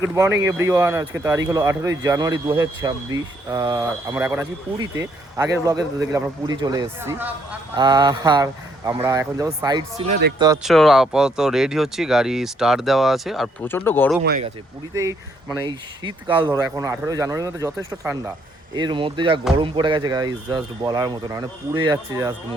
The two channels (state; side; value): normal; both; correlation 0.70